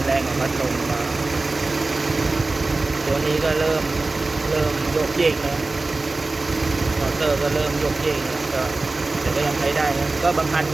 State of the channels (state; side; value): quieter; left; 3.3 dB